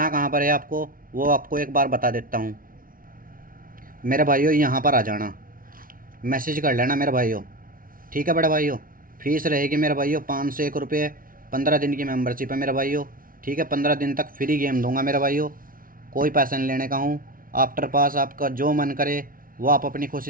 कहाँ पर है आपको, वो आपको एक बार बता देता हूँ। मेरे भाइयों यहाँ पर आ जाना, मैसेज कर लेना मेरे भाइयों। ठीक है बड़े भाइयों, फीस रहेगी मेरे भाइयों 501 रुपये, 15 दिन की मेंबरशिप है मेरे भाइयों। ठीक है, 15 दिन तक फ्री गेम दूंगा मेरे भाइयों, कोई पैसा नहीं लेने का हूँ। आफ्टर पास आपका जो मन करे वो आप अपनी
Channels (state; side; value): late; left; 0.41 ms